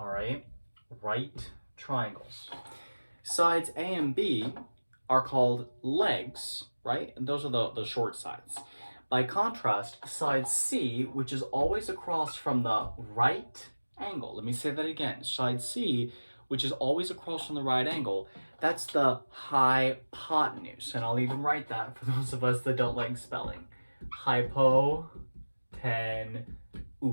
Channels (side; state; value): both; inverted; correlation -1.00